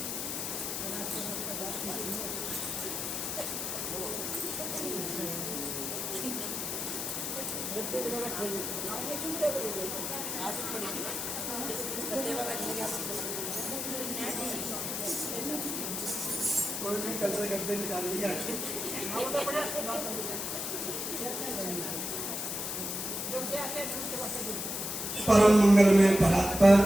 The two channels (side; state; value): left; noise; hiss, 3 dB below the sound